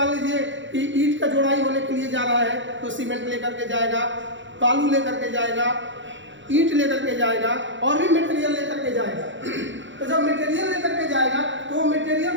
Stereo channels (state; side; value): late; left; 0.54 ms